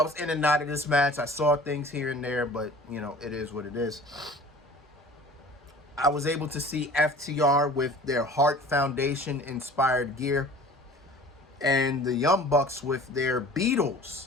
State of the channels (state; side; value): normal; both; correlation 0.45